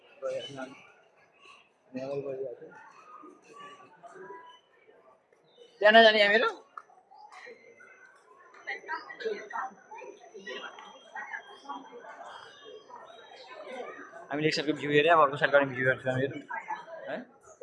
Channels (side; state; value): both; identical; correlation 1.00